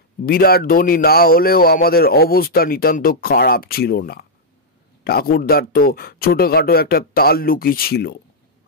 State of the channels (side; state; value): both; normal; correlation -0.06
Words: বিরাট ধনী না হলেও আমাদের অবস্থা নিতান্ত খারাপ ছিল না। ঠাকুরদার তো ছোটখাটো একটা তাল্লুকি ছিল।